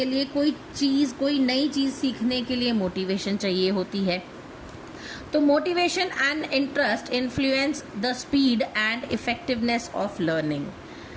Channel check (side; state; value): both; identical; correlation 1.00